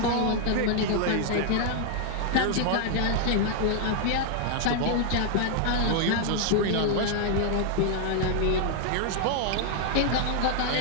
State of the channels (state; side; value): different; both; correlation 0.00